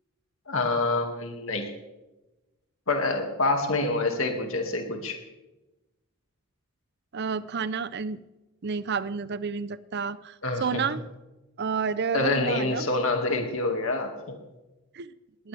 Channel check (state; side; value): normal; both; correlation -0.09